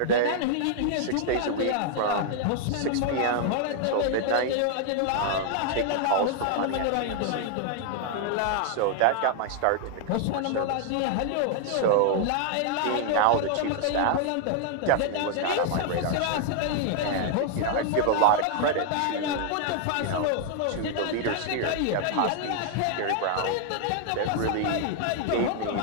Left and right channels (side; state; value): both; different; correlation 0.00